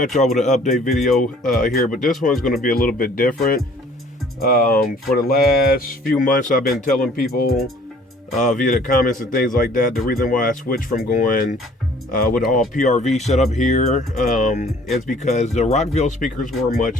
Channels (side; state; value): both; normal; correlation 0.55